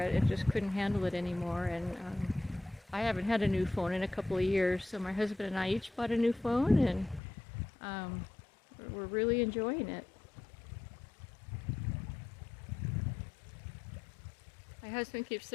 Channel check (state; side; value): drops out; right; at 7.2 s